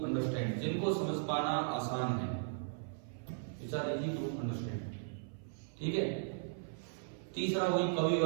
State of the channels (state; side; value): silent; left; 53 dB below the other